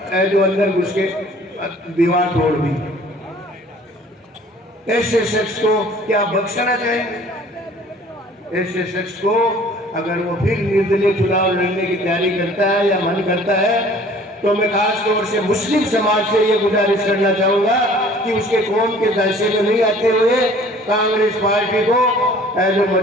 जो अंदर घुस के दीवार तोड़ दी। ऐसे शख्स को क्या बख्शना चाहिए? ऐसे शख्स को अगर वो फिर निर्दलीय चुनाव लड़ने की तैयारी करता है या मन करता है तो मैं खास तौर से मुस्लिम समाज से ये गुजारिश करना चाहूँगा कि उसके कौम के दायरे में नहीं आते हुए कांग्रेस पार्टी को जो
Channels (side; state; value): both; normal; correlation 0.52